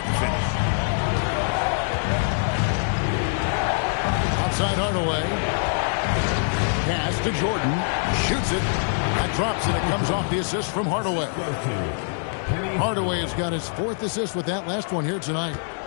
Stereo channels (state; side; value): silent; right; 61 dB below the other